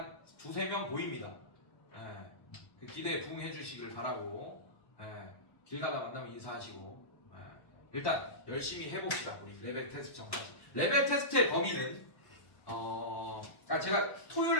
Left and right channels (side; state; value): right; late; 1.1 ms